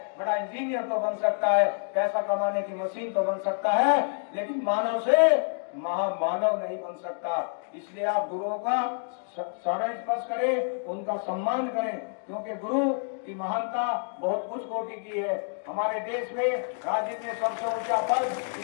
बड़ा इंजीनियर तो बन सकता है, पैसा कमाने की मशीन तो बन सकता है, लेकिन मानव से महामानव नहीं बन सकता। इसलिए आप गुरुओं का चरण स्पर्श करें, उनका सम्मान करें, क्योंकि गुरु की महानता बहुत उच्च कोटि की है। हमारे देश में राज्य में सबसे ऊंचा पद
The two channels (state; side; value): silent; right; digital silence